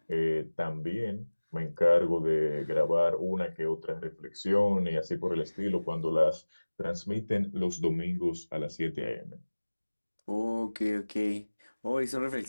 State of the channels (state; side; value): inverted; both; correlation -1.00